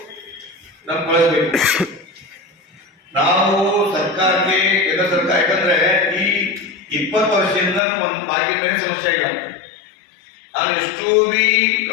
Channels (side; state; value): right; drops out; at 7.8 s